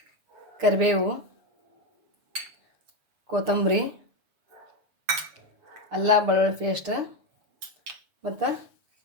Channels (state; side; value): late; left; 6.7 ms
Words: ಕರಿಬೇವು, ಕೊತ್ತಂಬರಿ, ಅಲ್ಲ ಬೆಳ್ಳುಳ್ಳಿ ಪೇಸ್ಟ್, ಮತ್ತು